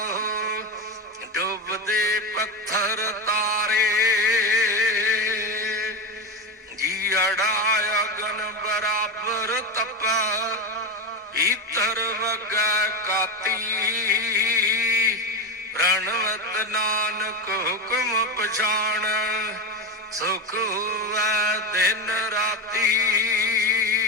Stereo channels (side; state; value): both; normal; correlation 0.17